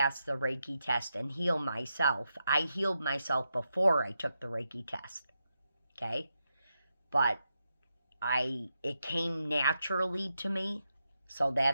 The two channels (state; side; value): inverted; both; correlation -0.86